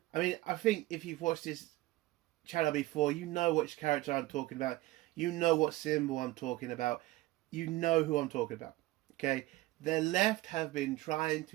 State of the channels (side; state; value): left; quieter; 18.2 dB